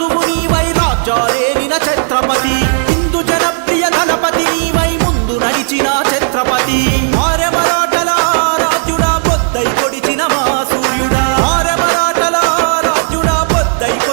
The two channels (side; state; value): left; silent; digital silence